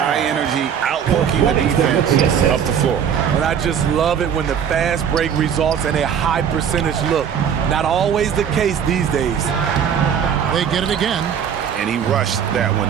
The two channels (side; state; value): left; quieter; 8.1 dB